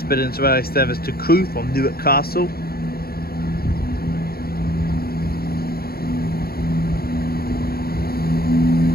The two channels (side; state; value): right; late; 0.44 ms